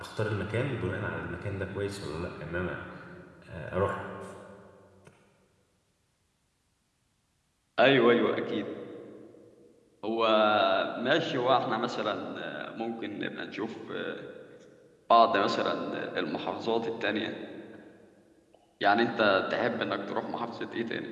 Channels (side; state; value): both; identical; correlation 1.00